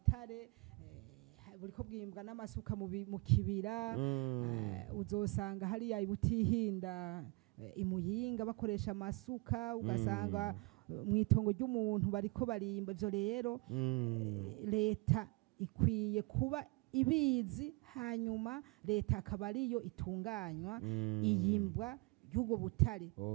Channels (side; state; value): left; quieter; 27.1 dB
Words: buriko bwimbwa n'amasuka mu kibira uzosanga hariya ibutihinda imuyinga bakoresha amasuka ugasanga mwitongo ry'umuntu bariko barimba ivyo rero leta ikwiye kuba ibizi hanyuma leta akaba ariyo itunganywa iyimbwa y'ubwo butare